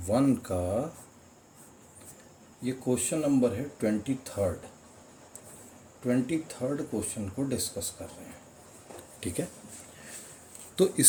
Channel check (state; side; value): identical; both; correlation 1.00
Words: का ये क्वेश्चन नंबर है 23rd क्वेश्चन को डिस्कस कर रहे हैं। ठीक है, तो